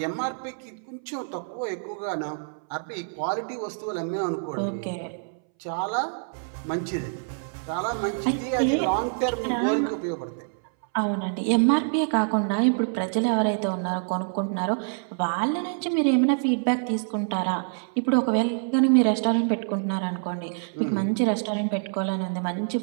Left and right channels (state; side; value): silent; left; 61 dB below the other